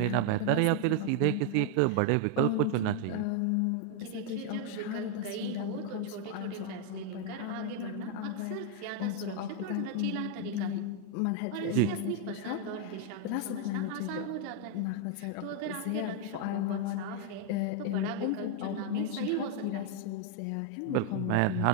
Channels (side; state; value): both; different; correlation 0.00